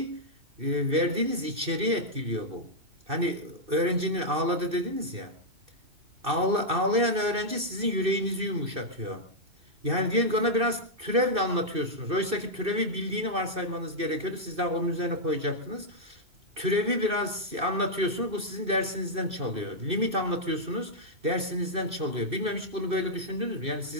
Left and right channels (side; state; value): left; late; 2.6 ms